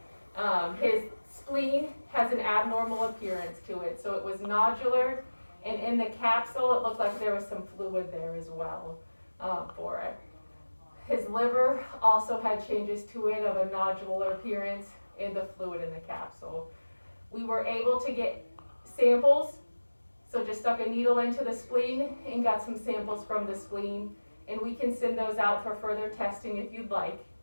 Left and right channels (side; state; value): both; inverted; correlation -1.00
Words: His spleen has an abnormal appearance to it, so it was nodular, and in the capsule, it looked like there was some fluid there as well for it. His liver also had changes to it of a nodular appearance in the fluid in the capsule. We were able to get samples, so just stuck a needle into the spleen and got some samples from the spleen, and we can send those out for further testing if you'd like.